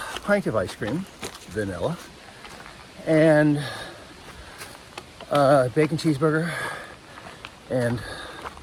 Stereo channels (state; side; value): identical; both; correlation 1.00